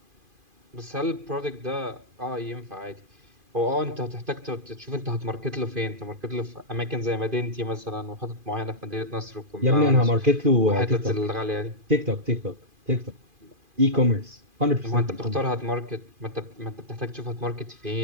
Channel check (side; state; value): left; late; 2.5 ms